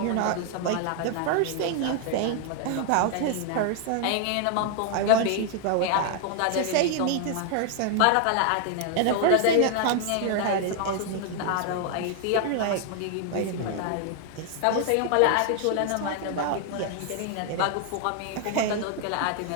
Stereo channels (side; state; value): both; different; correlation 0.00